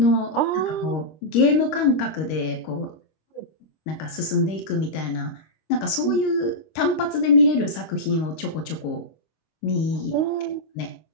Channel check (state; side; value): late; right; 25 ms